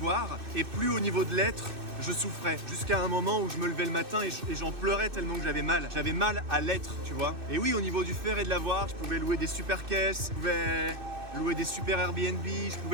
et plus au niveau de l'être, je souffrais. Jusqu'à un moment où je me levais le matin et j'en pleurais tellement que j'avais mal. J'avais mal à l'être, tu vois. Et oui, au niveau du faire et de l'avoir, je pouvais louer des super caisses, je pouvais louer des super Airbnb, je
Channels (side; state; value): left; late; 2.6 ms